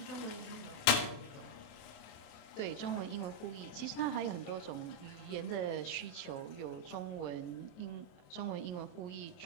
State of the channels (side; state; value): right; late; 28 ms